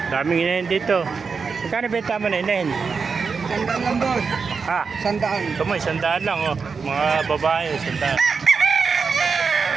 Daming inahin dito. Magkano benta mo na inahin? Sandaan lang, boss. Ha? Sandaan. Ito mo, 100 lang. Oh. Mga babae, 100.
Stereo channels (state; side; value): quieter; left; 5.2 dB